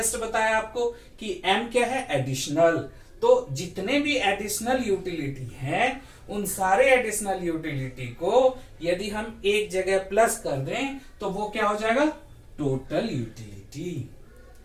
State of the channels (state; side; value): identical; both; correlation 1.00